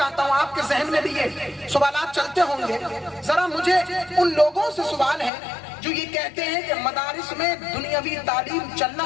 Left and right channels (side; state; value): right; drops out; at 5.3 s